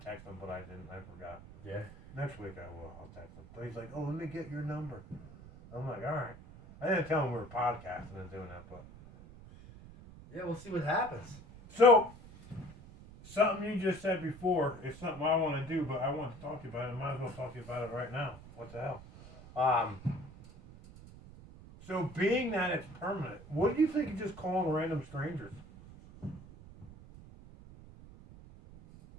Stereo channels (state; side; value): noise; right; rumble, 17 dB below the sound